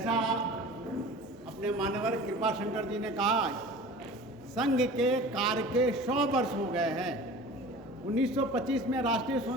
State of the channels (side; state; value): both; normal; correlation 0.40